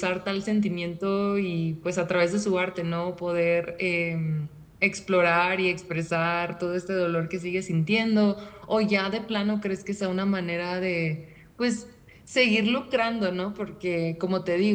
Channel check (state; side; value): identical; both; correlation 1.00